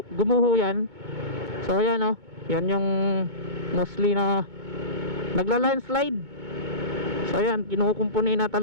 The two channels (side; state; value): left; late; 2.2 ms